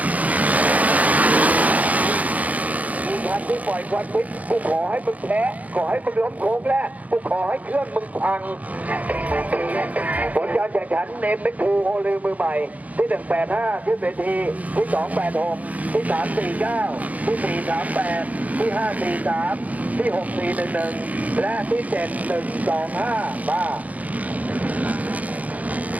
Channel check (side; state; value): left; late; 0.073 ms